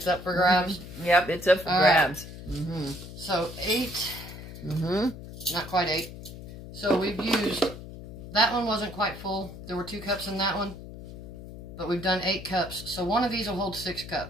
up for grabs? Yep, it's up for grabs. So 8. Not quite 8. So we've used... That one wasn't quite full. There were 2 cups in that one. But we've done 8 cups. So one of these will hold 6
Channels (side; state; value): left; noise; hum, 13 dB below the sound